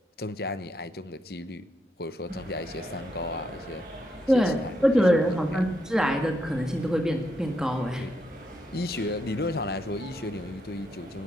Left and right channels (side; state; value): both; normal; correlation 0.79